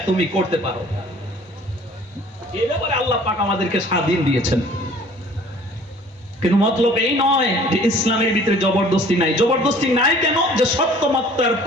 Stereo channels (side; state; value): both; normal; correlation 0.51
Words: তুমি করতে পারো। এই ব্যাপারে আল্লাহ পাক আমাদেরকে স্বাধীন দিয়েছেন। কিন্তু মতলব এই নয় যে ইসলামের ভিতরে জবরদস্তি নাই। জবরদস্তি নাই কেন? যে সত্য মিথ্যার